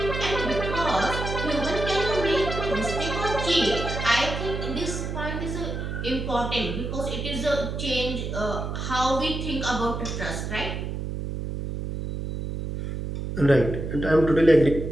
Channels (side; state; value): right; noise; hum, 4 dB below the sound